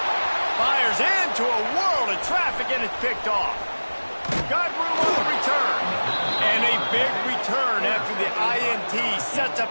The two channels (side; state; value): both; inverted; correlation -1.00